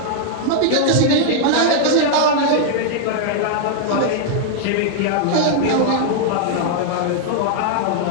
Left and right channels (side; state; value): both; different; correlation -0.01